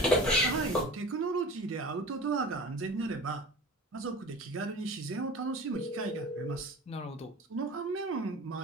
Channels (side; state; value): both; normal; correlation 0.37